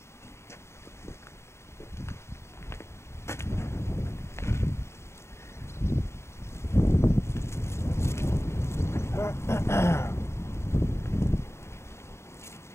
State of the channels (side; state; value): right; late; 0.13 ms